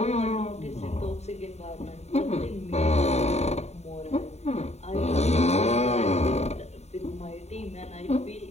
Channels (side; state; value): right; late; 0.32 ms